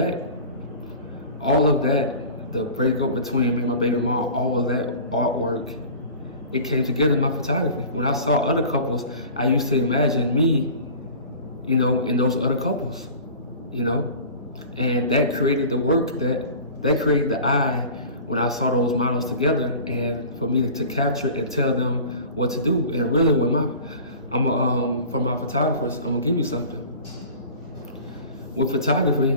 the breakup between me and my baby mom, all of that artwork, it came together in my photography. When I saw other couples, I used to imagine me, in those other couples, and that created the work that created the eye when I saw those models together, and for me to capture and tell them what to do. And really, for my photographers, I'm gonna give you something. With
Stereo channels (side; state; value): both; inverted; correlation -0.40